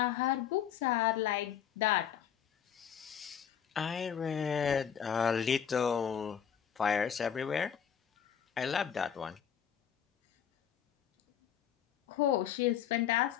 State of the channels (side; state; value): right; quieter; 8.6 dB